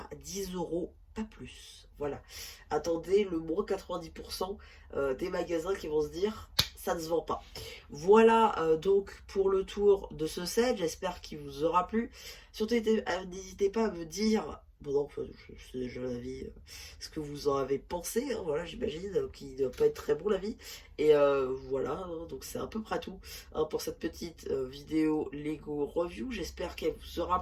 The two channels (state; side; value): identical; both; correlation 1.00